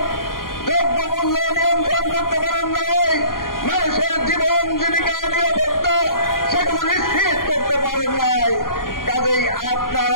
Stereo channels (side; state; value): right; late; 0.91 ms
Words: দ্রব্যমূল্য নিয়ন্ত্রণ করতে পারেন নাই, মানুষের জীবন জীবিকা নিরাপত্তা সেগুলো নিশ্চিত করতে পারেন নাই। কাজেই আপনার